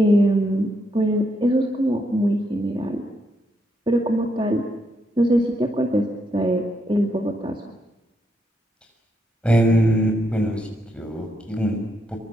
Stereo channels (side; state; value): both; normal; correlation 0.79